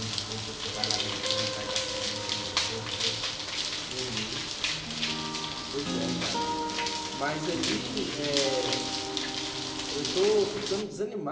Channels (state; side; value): identical; both; correlation 1.00